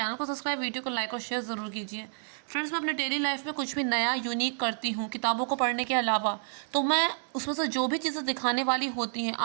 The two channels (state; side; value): silent; left; digital silence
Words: को सब्सक्राइब, वीडियो को लाइक और शेयर ज़रूर कीजिए। फ्रेंड्स, मैं अपने डेली लाइफ में कुछ भी नया यूनिक करती हूँ किताबों को पढ़ने के अलावा, तो मैं उसमें से जो भी चीज़ें दिखाने वाली होती हैं